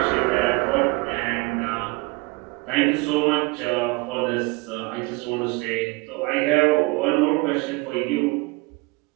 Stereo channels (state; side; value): quieter; left; 26.6 dB